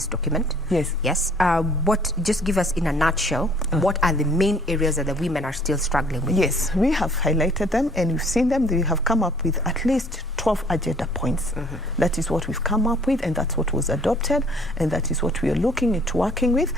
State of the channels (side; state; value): both; normal; correlation 0.57